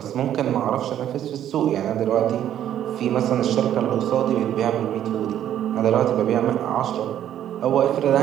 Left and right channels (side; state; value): left; quieter; 10.9 dB